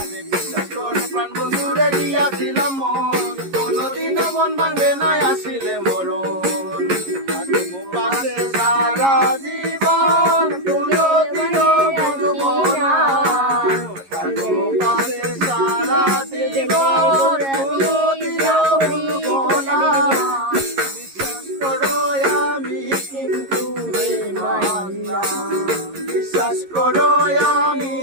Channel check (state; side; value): late; left; 11 ms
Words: বিশ্বাস করে প্রাণ বন্ধুরে দিয়াছিলাম মন, কোনোদিনও মন ভাঙবে না আসিলে মরণ। থাকবো পাশে সারা জীবন, কোনোদিনও ভুলবো না। থাকবো পাশে সারা জীবন, কোনোদিনও ভুলবো না। বিশ্বাস করো আমি কিন্তু বেঈমান না, বিশ্বাস করো আমি